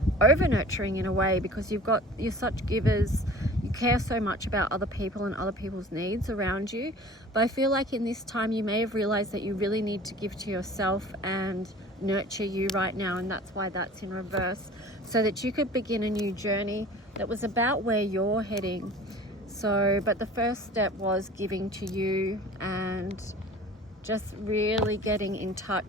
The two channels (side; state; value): both; normal; correlation 0.43